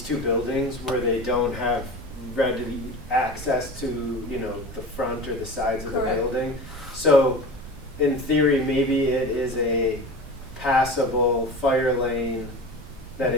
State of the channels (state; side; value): noise; right; rumble, 17 dB below the sound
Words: 2 buildings where they don't have ready access to, the front or the sides of the Correct. building. So in theory, maybe it is a passable fire lane that